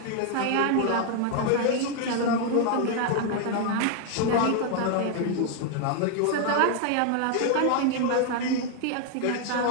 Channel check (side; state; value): both; different; correlation 0.00